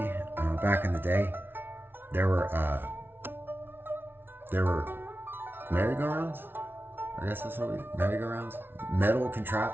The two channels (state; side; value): late; left; 0.11 ms